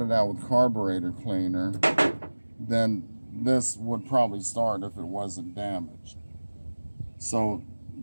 it out with carburetor cleaner, then this would probably start if it wasn't damaged. So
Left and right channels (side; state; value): both; inverted; correlation -1.00